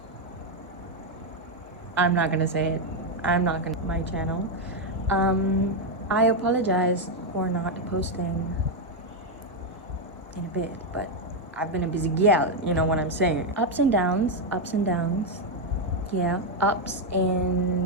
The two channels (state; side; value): normal; both; correlation 0.03